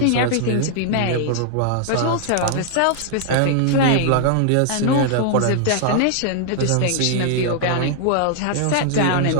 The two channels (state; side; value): different; both; correlation 0.00